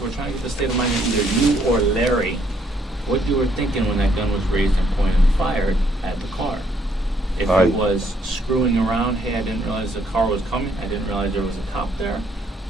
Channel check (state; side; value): normal; both; correlation 0.69